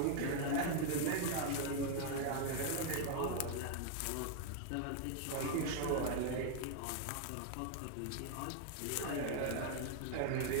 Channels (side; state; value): both; different; correlation 0.00